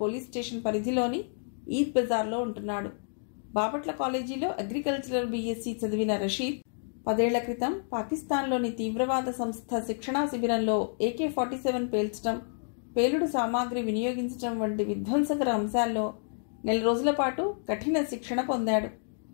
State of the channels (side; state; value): right; silent; digital silence